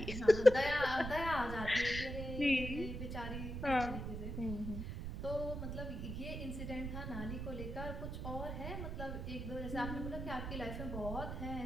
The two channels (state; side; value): noise; right; rumble, 5 dB below the sound